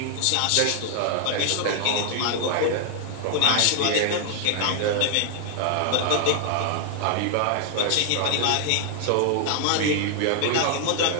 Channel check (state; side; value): different; both; correlation 0.00